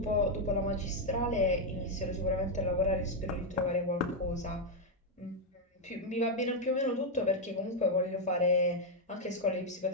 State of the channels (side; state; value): both; normal; correlation 0.01